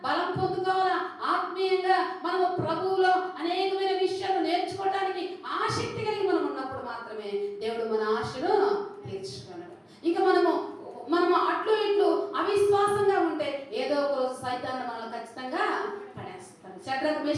బలం పొందుకోవాలా, ఆత్మీయంగా మనము ప్రభువులో అనేకమైన విషయాలు నేర్చుకోవడానికి ఆసక్తి కలిగి మనం ఉన్నప్పుడు మాత్రమే దేవుడు మన ఆశను తీర్చుకోగలడు. ఇంకా మనము అట్లు ఇట్లు అవిశ్వాసంగా ఉంటే ఏదో ఒక రోజు సైతాన్ని మనల్ని ఖచ్చితంగా పడేస్తాడు. షడ్రకు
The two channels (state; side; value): identical; both; correlation 1.00